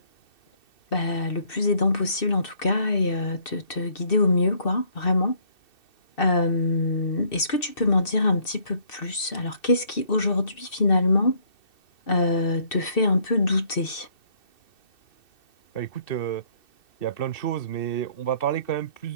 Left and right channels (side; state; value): right; late; 2.6 ms